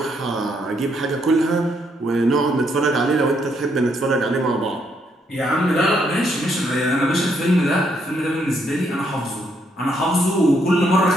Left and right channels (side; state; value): both; normal; correlation 0.74